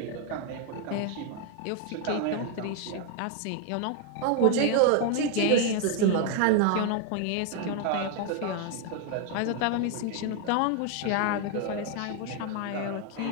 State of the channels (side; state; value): both; different; correlation 0.01